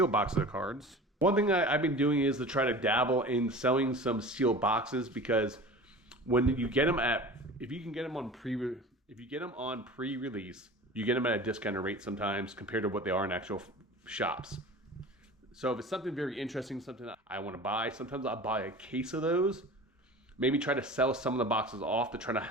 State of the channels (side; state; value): both; normal; correlation 0.38